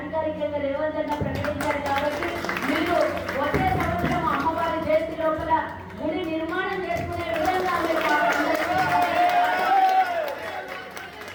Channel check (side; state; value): both; identical; correlation 1.00